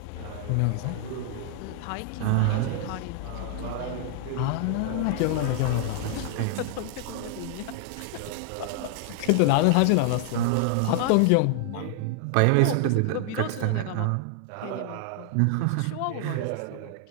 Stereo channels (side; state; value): both; different; correlation 0.00